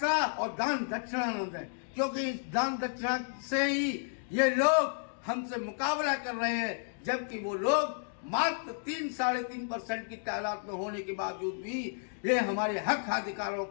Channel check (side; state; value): right; silent; digital silence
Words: और दान दक्षिणा न दें, क्योंकि इस दान दक्षिणा से ही ये लोग हमसे मुकाबला कर रहे हैं, जबकि वो लोग मात्र 3-3.5% की तादाद में होने के बावजूद भी ये हमारे हक अधिकारों